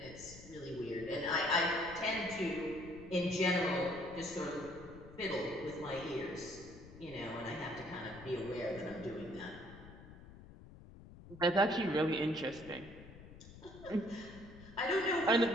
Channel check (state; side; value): noise; left; rumble, 17 dB below the sound